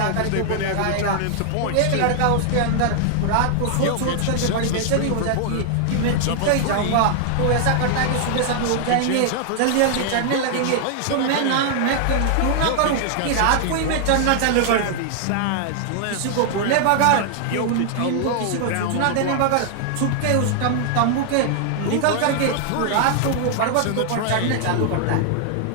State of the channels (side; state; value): both; different; correlation 0.00